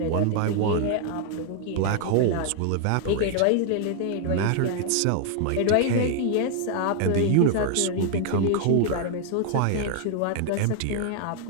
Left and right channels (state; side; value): different; both; correlation 0.00